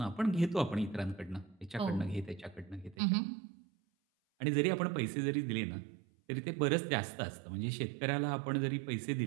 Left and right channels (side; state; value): left; drops out; at 3.0 s